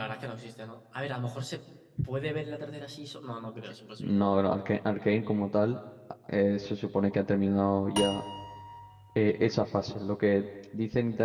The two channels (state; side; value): identical; both; correlation 1.00